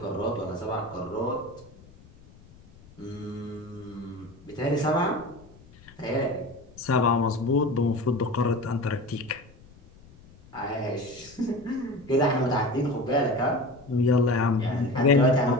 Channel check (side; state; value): left; noise; rumble, 24 dB below the sound